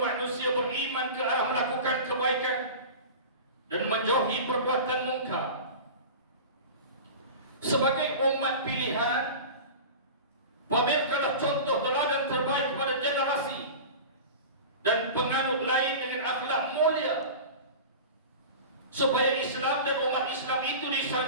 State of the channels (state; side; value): inverted; both; correlation -0.33